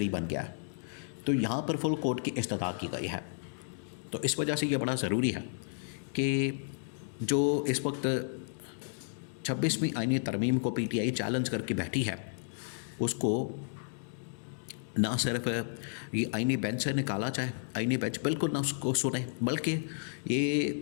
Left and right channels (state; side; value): silent; right; digital silence